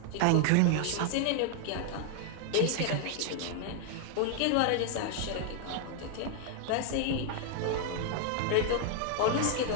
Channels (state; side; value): different; both; correlation 0.00